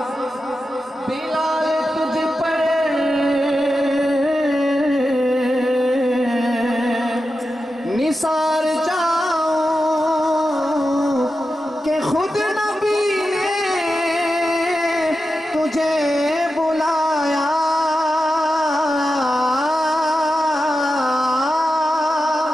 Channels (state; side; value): normal; both; correlation 0.91